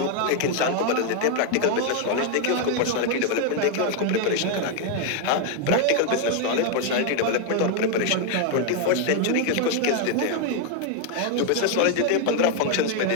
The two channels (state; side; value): different; both; correlation 0.00